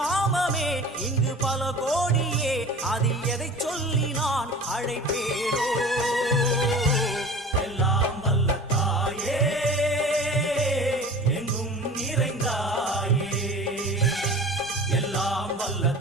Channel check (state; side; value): normal; both; correlation 0.40